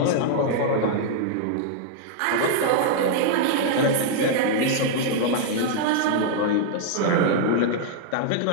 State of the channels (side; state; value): both; different; correlation -0.01